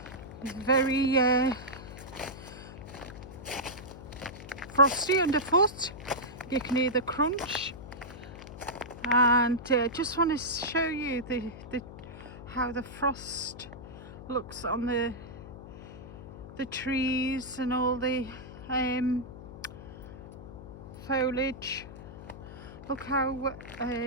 It's very frosty underfoot, you can hear the crunch, and just want to show you how the frost looks on the trees and all the foliage. Look how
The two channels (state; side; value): noise; left; hum, 14 dB below the sound